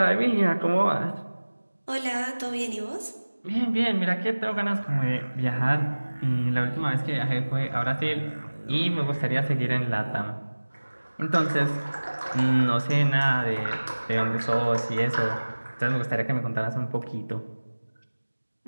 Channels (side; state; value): both; inverted; correlation -1.00